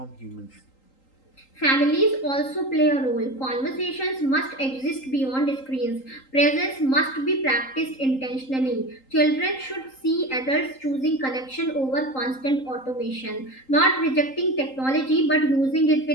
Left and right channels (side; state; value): right; late; 3.8 ms